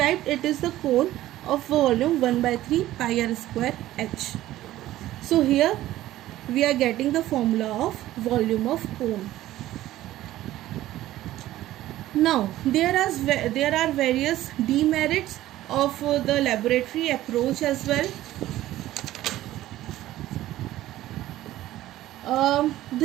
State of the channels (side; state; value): left; quieter; 14.7 dB